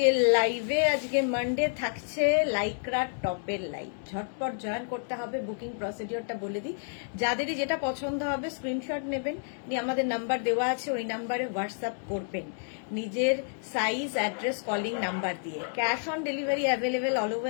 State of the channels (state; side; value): silent; right; digital silence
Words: লাইভে। আজকে মানডে থাকছে লাইক্রা টপের লাইভ। ঝটপট জয়েন করতে হবে। বুকিং প্রসিডিওরটা বলে দিই, যাদেরই যেটা পছন্দ হবে স্ক্রিনশট নেবেন, নিয়ে আমাদের নাম্বার দেওয়া আছে, ওই নাম্বারে হোয়াটসঅ্যাপ করবেন নিজের সাইজ, অ্যাড্রেস, কলিং নাম্বার দিয়ে। Cash on delivery available all